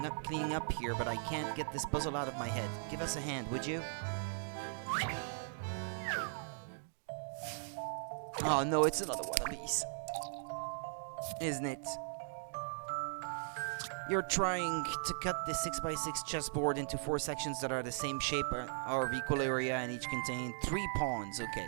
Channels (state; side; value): silent; left; digital silence